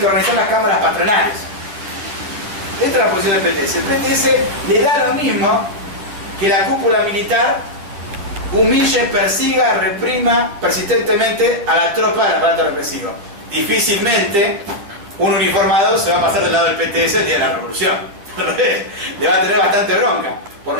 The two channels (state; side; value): late; left; 10 ms